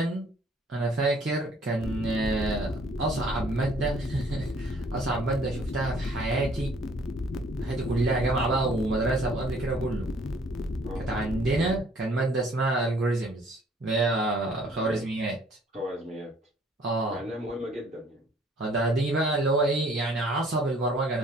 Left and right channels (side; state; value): both; normal; correlation 0.59